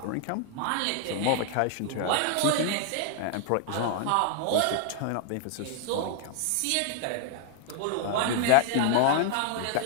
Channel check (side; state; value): both; different; correlation 0.00